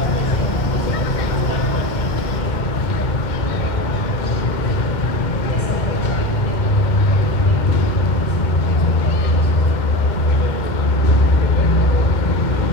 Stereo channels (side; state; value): right; late; 2.1 ms